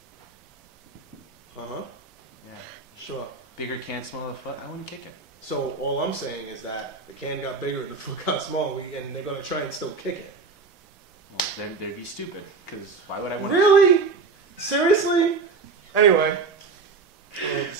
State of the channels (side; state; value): left; quieter; 4.5 dB